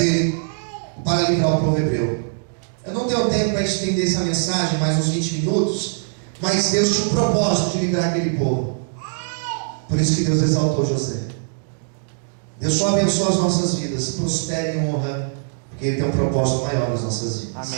para livrar o povo hebreu. Eu não tenho tempo para estender essa mensagem, mais uns 20 minutos, mas Deus tinha um propósito de livrar aquele povo. Por isso que Deus exaltou José. Deus só abençoa as nossas vidas, prospera e honra, porque Ele tem um propósito maior nas nossas vidas.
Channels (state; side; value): silent; left; digital silence